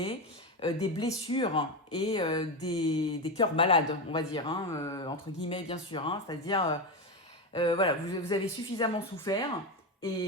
des blessures et des cœurs malades, on va dire, hein, entre guillemets, bien sûr. Hein, c'est-à-dire, voilà, vous avez suffisamment souffert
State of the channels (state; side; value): normal; both; correlation 0.15